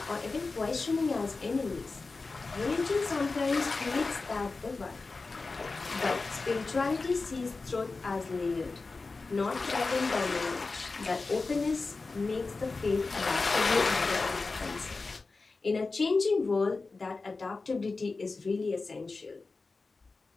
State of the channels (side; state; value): right; quieter; 3.9 dB